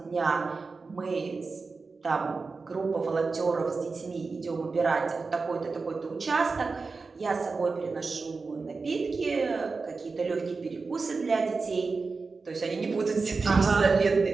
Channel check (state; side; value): quieter; left; 4.3 dB